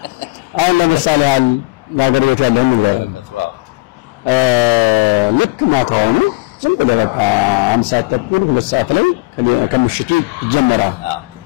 አሁን ለምሳሌ ያገለግሎት ያለው ነው ልክ ማታው ነው ዝም ብለህ በቃ 1 ሰዓት ተኩል 2 ሰዓት ላይ ከምሽቱ ይጀመራል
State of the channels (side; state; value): right; quieter; 25.0 dB